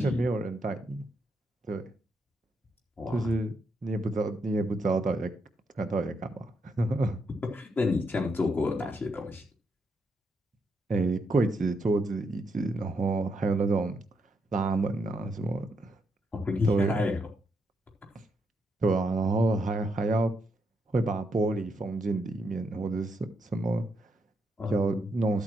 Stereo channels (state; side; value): normal; both; correlation 0.79